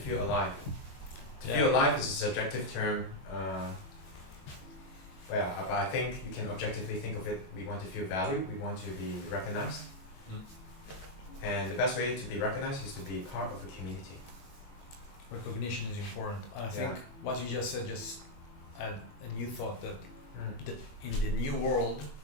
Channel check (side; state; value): right; late; 21 ms